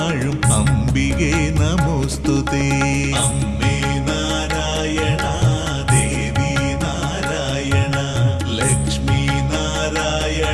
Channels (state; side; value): identical; both; correlation 1.00